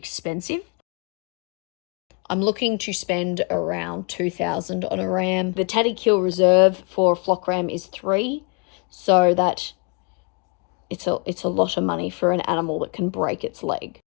I'm looking to spend around $2,000 on a ram. The Tatty Kill reserve for a flock ram is 3, so that it's a lot of money for an animal that can break its leg.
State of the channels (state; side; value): quieter; right; 34.9 dB